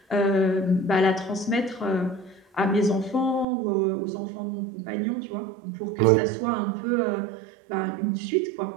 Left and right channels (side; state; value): left; drops out; at 3.5 s